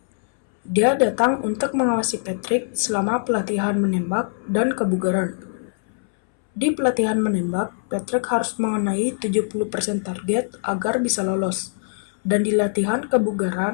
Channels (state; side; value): silent; right; 64 dB below the other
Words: Dia datang untuk mengawasi Patrick selama pelatihan menembak dan kebugaran. Di pelatihan menembak, Patrick harus mengenai 70% target agar bisa lolos. Dan di latihan